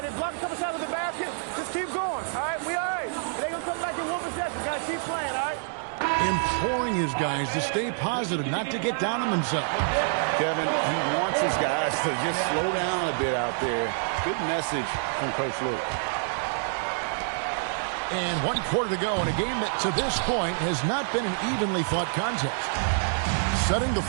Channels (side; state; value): left; silent; digital silence